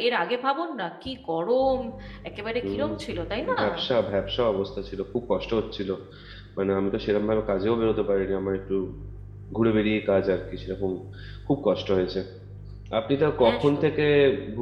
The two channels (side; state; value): both; identical; correlation 1.00